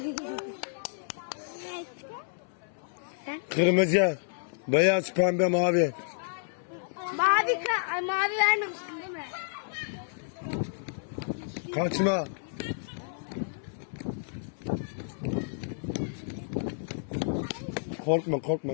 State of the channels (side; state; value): right; silent; 56 dB below the other